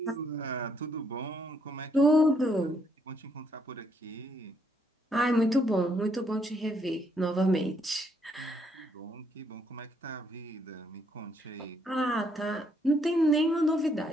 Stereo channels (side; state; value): both; normal; correlation 0.72